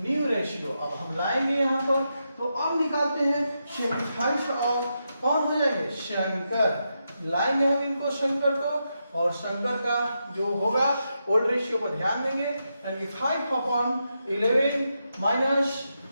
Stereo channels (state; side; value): inverted; both; correlation -0.85